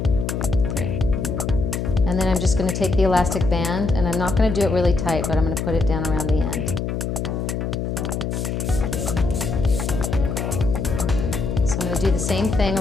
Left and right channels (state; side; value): noise; left; hum, 2 dB below the sound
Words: 3. And then I'm just going to take the elastic band, and I'm not going to do it really tight, but I'm going to put it down around the end. So I'm going to do the same thing